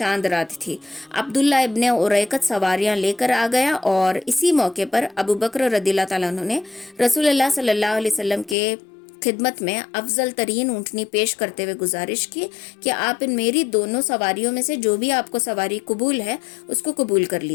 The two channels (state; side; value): drops out; right; at 8.6 s